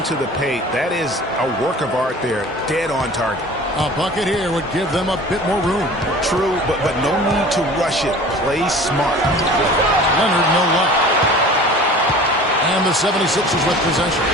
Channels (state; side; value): normal; both; correlation 0.43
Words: the paint, that is a work of art there, dead on target. A bucket here would give them a bit more room. True, but no need to rush it. Play smart. Leonard, no luck. And the 76ers with possession.